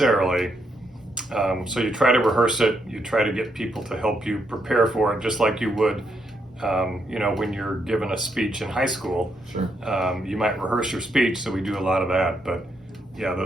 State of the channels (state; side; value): normal; both; correlation 0.78